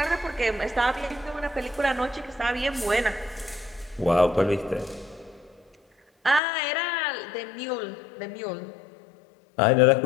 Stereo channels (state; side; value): drops out; right; at 6.4 s